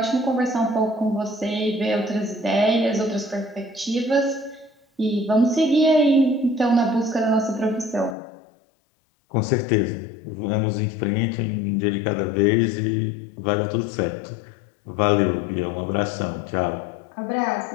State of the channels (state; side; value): drops out; right; at 8.2 s